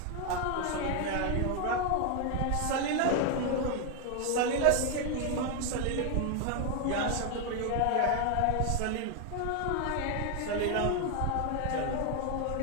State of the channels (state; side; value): different; both; correlation 0.01